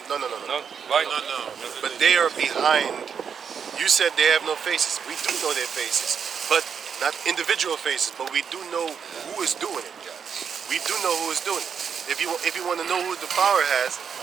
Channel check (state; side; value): quieter; left; 7.0 dB